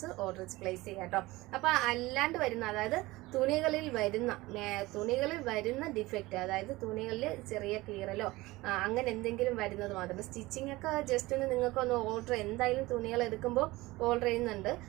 ഓർഡർ പ്ലേസ് ചെയ്യുക കേട്ടോ. അപ്പൊ അല്ലാണ്ട് വരുന്ന, അതായത് തുണികളിൽ വരുന്ന ഡിഫക്റ്റ്, അതായത് തുണികളിൽ ചെറിയ കീറലോ അങ്ങനെ എന്തെങ്കിലും വരുന്നത് മാത്രം. സ്റ്റിച്ചിങ് ഒക്കെ ജസ്റ്റ് ഒന്ന് നിങ്ങൾക്ക് ഒന്ന് ഓർഡർ, എന്തായാലും തുണികൾ എടുക്കുമ്പോൾ ഓർഡർ ചെയ്യുന്നുണ്ട്,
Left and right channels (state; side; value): quieter; left; 20.1 dB